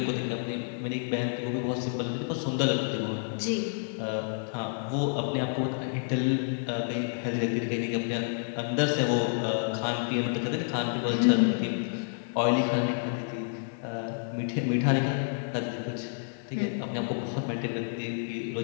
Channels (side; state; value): right; silent; digital silence